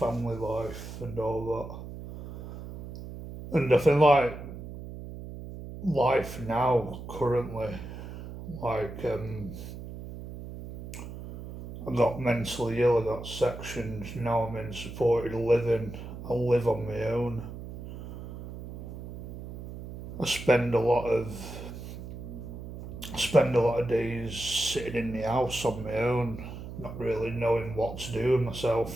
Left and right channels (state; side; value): noise; right; hum, 11 dB below the sound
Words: life and all that, and I think like life now currently, like I got mentally ill, I got sectioned. Now I'm in supported living. I live on my own. I spend a lot of days sitting in the house on my own, not really knowing what to do with